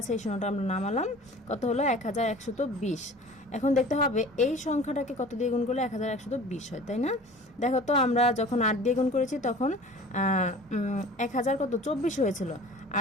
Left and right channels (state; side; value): normal; both; correlation 0.43